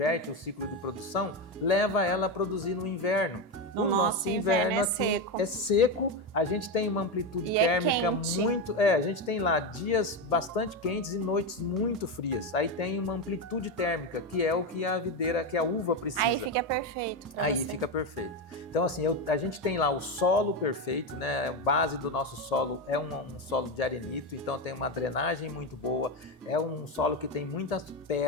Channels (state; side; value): normal; both; correlation 0.13